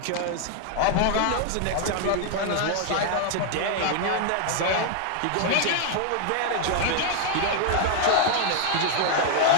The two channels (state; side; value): different; both; correlation 0.00